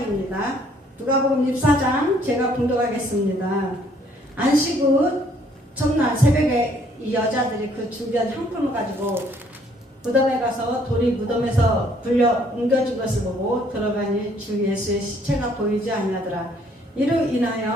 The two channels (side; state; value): both; normal; correlation 0.63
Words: 누가복음 24장 제가 봉독하겠습니다. 안식 후 첫날 새벽에 이 여자들이 그 준비한 향품을 가지고 무덤에 가서 돌이 무덤에서 불려 옮겨진 것을 보고 들어가니 주 예수의 시체가 보이지 아니하더라. 이로